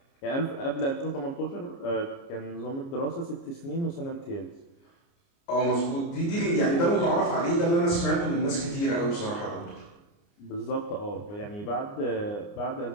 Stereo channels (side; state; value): right; late; 29 ms